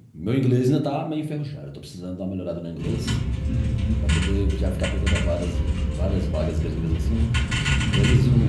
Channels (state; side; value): identical; both; correlation 1.00